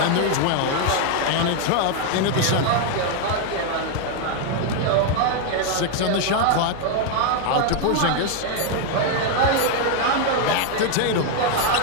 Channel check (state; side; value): different; both; correlation 0.00